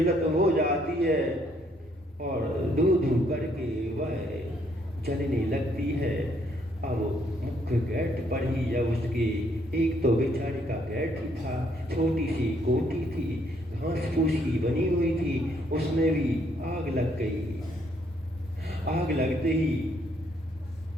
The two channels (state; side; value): normal; both; correlation 0.69